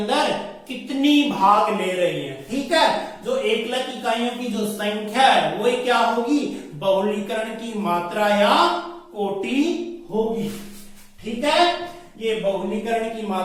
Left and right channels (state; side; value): identical; both; correlation 1.00